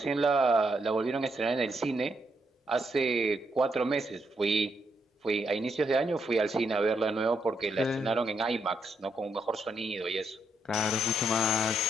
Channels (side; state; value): both; normal; correlation 0.78